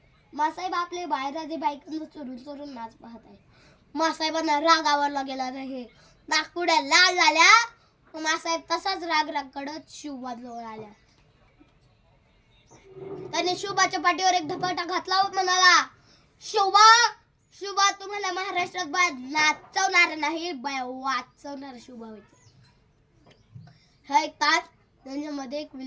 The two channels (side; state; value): both; identical; correlation 1.00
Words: आपले बाळराजे बायकांचा चोरून चोरून नाच पाहत आहे. मासाहेबांना राग आवरला गेला नाही. नागपुड्या लाल झाल्या. मासाहेब तसाच राग कडत शिवबाजवळ आल्या. त्याने शिवबाच्या पाठीवर एक धपाटा घातला व म्हणाला, शिवबा शिवबा तुम्हाला महाराष्ट्रात बाय नाचवणार नाही, बाय वाचवणार शिवबा होते. हा एक तास त्यांच्यामध्ये एक